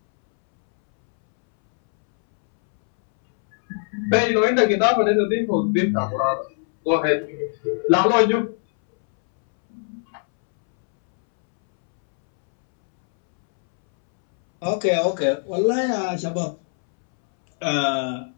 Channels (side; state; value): right; silent; 65 dB below the other